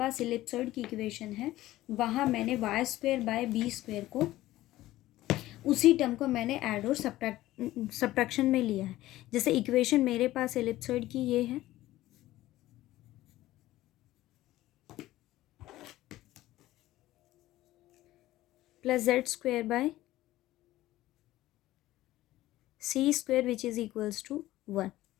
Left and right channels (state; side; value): quieter; right; 15.9 dB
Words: इलिप्सॉइड की इक्वेशन है वहाँ मैंने y²/b² को, उसी टर्म को मैंने ऐड और सब्ट्रैक्शन में लिया है। जैसे इक्वेशन मेरे पास इलिप्सॉइड की ये है, plus z² c square which is equals to 1।